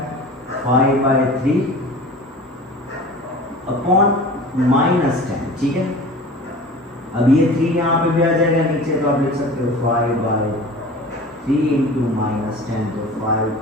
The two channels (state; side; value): normal; both; correlation 0.39